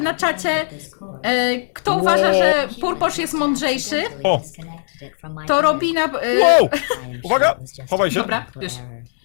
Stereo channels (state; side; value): silent; right; digital silence